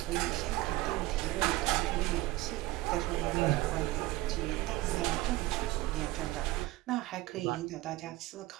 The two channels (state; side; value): quieter; left; 18.4 dB